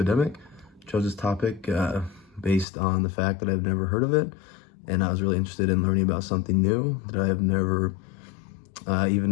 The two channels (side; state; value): right; drops out; at 2.7 s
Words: Chose this topic based on the fact that I've never heard of it, and I was really interested in learning about something new that I have never even